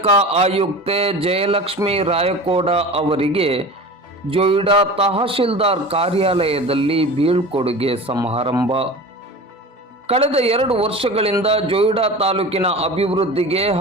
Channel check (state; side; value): normal; both; correlation 0.35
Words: ಆಯುಕ್ತೆ ಜಯಲಕ್ಷ್ಮಿ ರಾಯಕೋಡ ಅವರಿಗೆ ಜೊಯ್ಡಾ ತಹಶೀಲ್ದಾರ್ ಕಾರ್ಯಾಲಯದಲ್ಲಿ ಬೀಳ್ಕೊಡುಗೆ ಸಮಾರಂಭ. ಕಳೆದ 2 ವರ್ಷಗಳಿಂದ ಜೊಯ್ಡಾ ತಾಲೂಕಿನ ಅಭಿವೃದ್ಧಿಗೆ